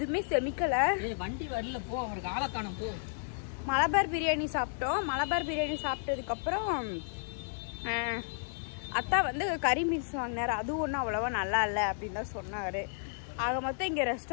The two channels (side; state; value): right; silent; digital silence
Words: செமிக்கலை. வண்டி வரல போ. அவருக்கு ஆளை காணும் போ. மலபார் பிரியாணி சாப்பிட்டோம். மலபார் பிரியாணி சாப்பிட்டதுக்கப்புறம் அத்தா வந்து கறி மீல்ஸ் வாங்கினார். அதுவும் ஒன்றும் அவ்வளோவா நல்லா இல்லை அப்படின்னு தான் சொன்னார். ஆக மொத்தம் இங்கே